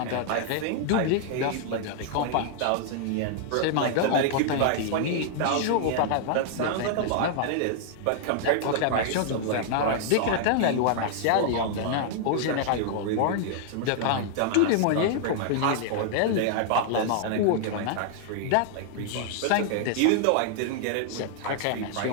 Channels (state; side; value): different; both; correlation -0.01